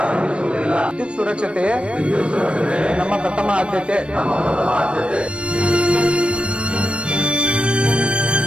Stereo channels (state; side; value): late; left; 0.059 ms